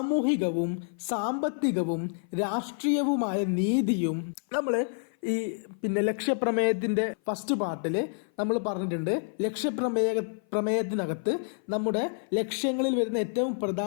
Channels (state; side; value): silent; right; 56 dB below the other